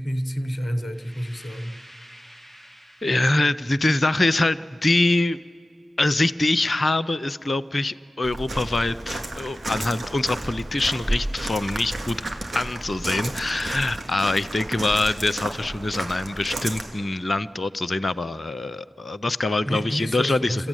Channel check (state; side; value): normal; both; correlation 0.95